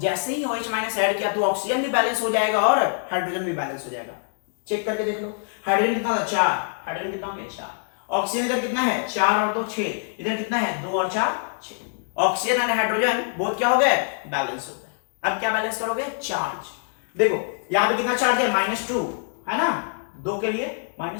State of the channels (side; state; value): right; silent; digital silence